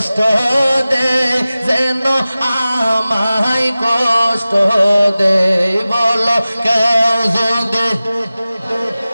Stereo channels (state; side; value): inverted; both; correlation -0.96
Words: দে, যেন আমায় কষ্ট দে, বলো কেউ যদি